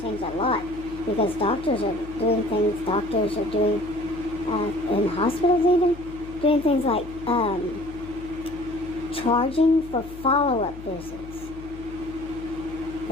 changed a lot because doctors are doing things. Doctors are doing in hospitals even doing things like charging for follow-up visits.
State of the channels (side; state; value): left; noise; hum, 15 dB below the sound